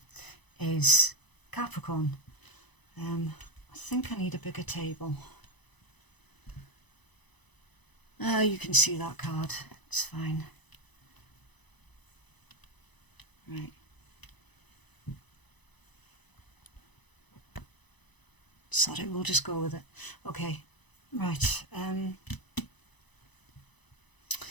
is Capricorn. I think I need a bigger table. You can see that card, it's fine. Right. Sorry, we'll just go with it. Okay, right.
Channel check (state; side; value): late; right; 1.0 ms